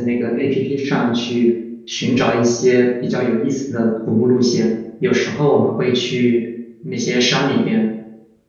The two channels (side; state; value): both; identical; correlation 1.00